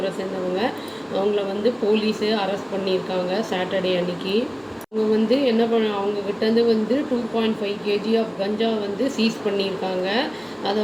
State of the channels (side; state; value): both; identical; correlation 1.00